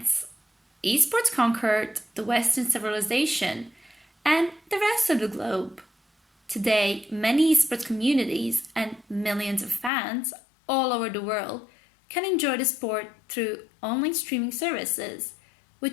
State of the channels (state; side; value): drops out; right; at 9.9 s